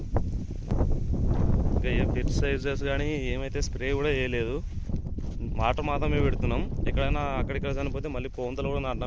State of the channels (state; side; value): identical; both; correlation 1.00